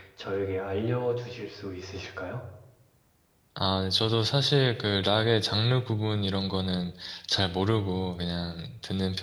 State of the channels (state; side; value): identical; both; correlation 1.00